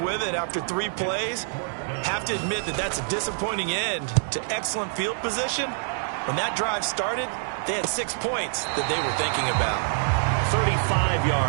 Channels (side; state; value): left; silent; digital silence